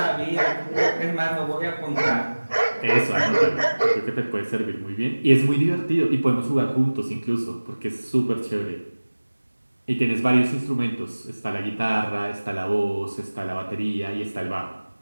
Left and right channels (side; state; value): both; inverted; correlation -1.00